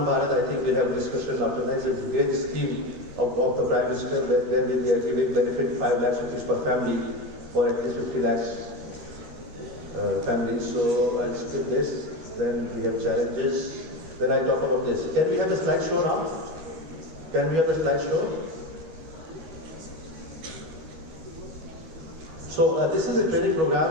Bharat, I think we'll have a discussion after that. It's a great scheme of the Prime Minister where we are giving benefit 5 lakhs rupees per family for at least 50 lakhs families. So I'll skip this. Then we have challenges. Then I talk about this. Can we have the slideshow now? Can we have the slideshow? So this is a training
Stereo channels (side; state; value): left; late; 12 ms